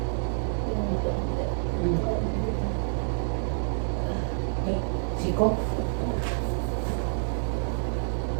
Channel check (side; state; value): left; silent; digital silence